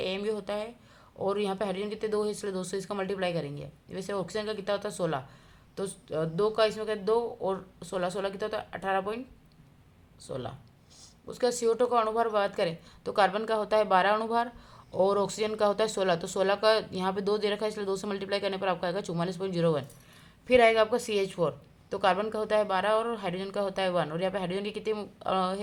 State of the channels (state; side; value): identical; both; correlation 1.00